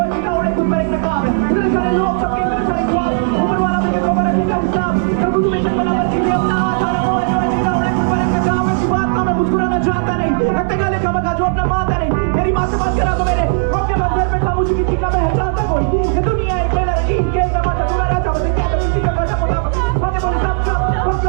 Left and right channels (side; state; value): left; silent; digital silence